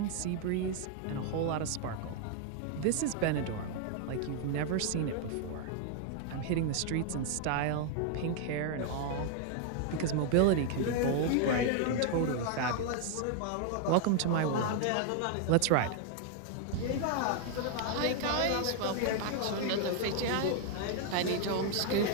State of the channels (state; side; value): different; both; correlation 0.00